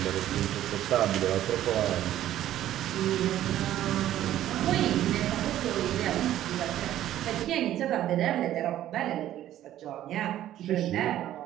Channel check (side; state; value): left; quieter; 12.7 dB